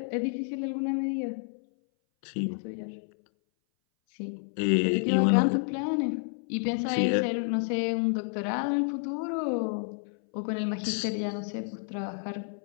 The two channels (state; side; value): silent; right; 58 dB below the other